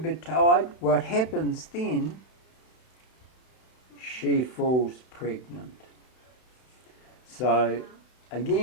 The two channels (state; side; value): late; right; 32 ms